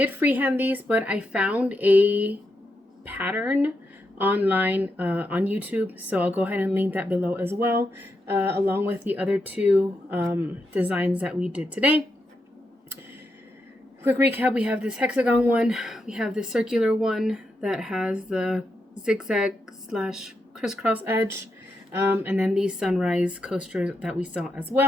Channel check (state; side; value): normal; both; correlation 0.84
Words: freehand these, but I found a pattern online on YouTube, so I'll go ahead and link that below as well, along with the other two designs that we did today. Quick recap, we have this hexagon one, we have this circular one that has the zigzag slash crisscross edge, and then these sunrise coasters that we saw as